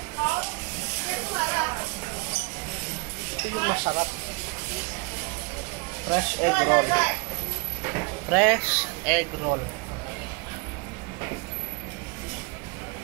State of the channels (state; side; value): quieter; left; 30.6 dB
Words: Ito yung masarap. Fresh egg roll. Fresh egg roll.